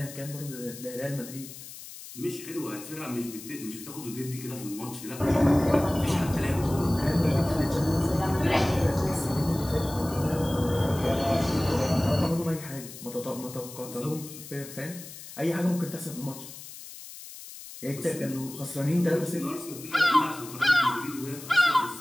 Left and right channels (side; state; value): left; noise; hiss, 14 dB below the sound